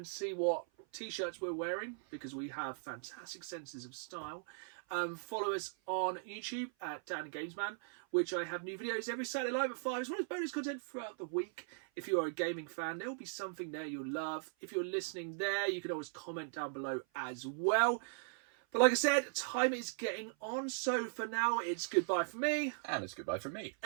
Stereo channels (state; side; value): silent; left; 52 dB below the other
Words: see what t-shirts we're wearing, because we have fantastic senses of style, follow us on YouTube at Dan Gamesman, which I have new videos every Saturday live at 5, as well as bonus content throughout the week. If you are a gaming fan, there will be something there you'll love. If you're listening there, you can always comment down below as well. But like I said, time is getting on, so for now, it's goodbye from me. And it's goodbye from me.